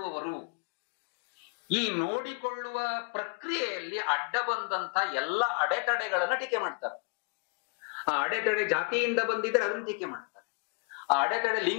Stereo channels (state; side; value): quieter; right; 36.7 dB